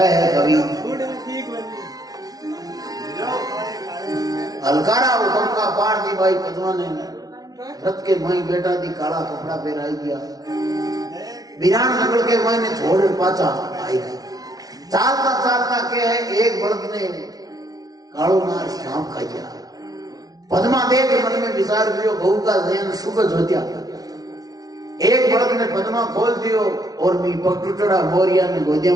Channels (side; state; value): left; late; 0.18 ms